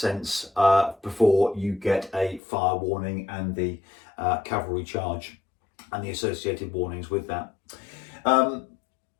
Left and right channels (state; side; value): drops out; right; at 2.4 s